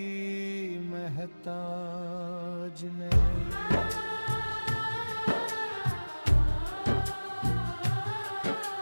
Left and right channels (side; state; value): both; inverted; correlation -1.00